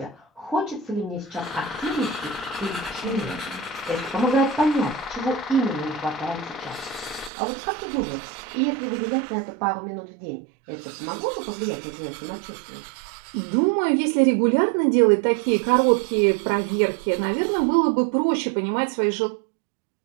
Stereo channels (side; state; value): left; drops out; at 7.3 s